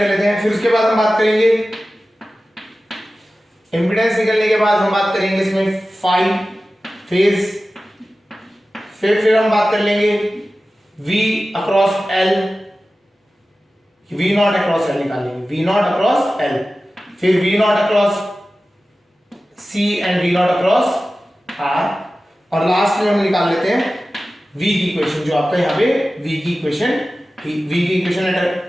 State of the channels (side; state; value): both; normal; correlation 0.95